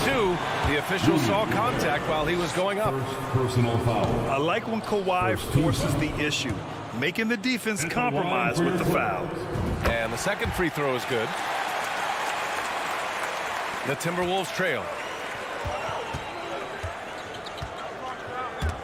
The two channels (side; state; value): both; identical; correlation 1.00